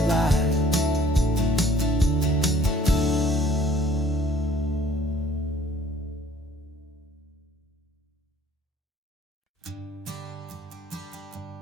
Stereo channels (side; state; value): both; normal; correlation 0.57